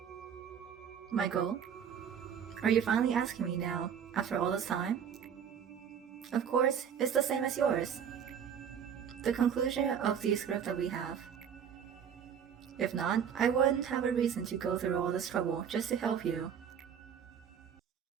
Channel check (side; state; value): left; quieter; 8.0 dB